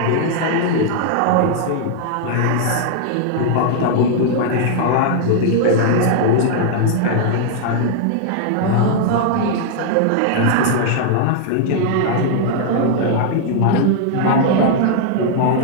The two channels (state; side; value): different; both; correlation -0.01